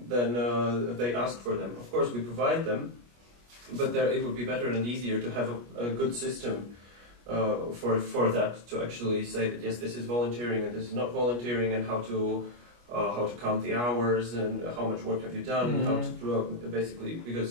they ask for them. Of course, we provide them, but it would be better and easier to have a good system for that, to actually say that yes, this is volunteering and this is not volunteering, and how to count the hours and how much work have you done, how to basically,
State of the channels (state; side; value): late; left; 25 ms